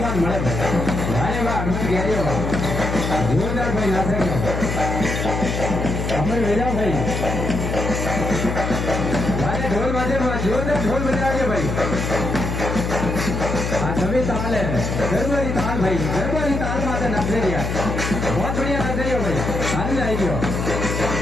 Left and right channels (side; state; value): left; noise; hum, 2 dB below the sound